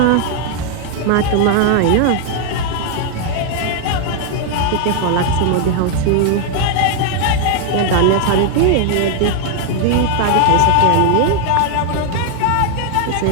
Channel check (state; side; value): different; both; correlation 0.00